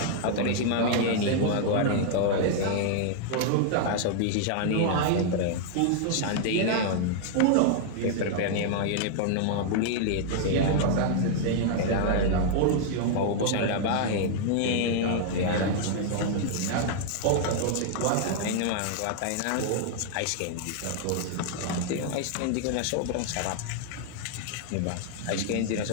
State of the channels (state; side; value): different; both; correlation 0.00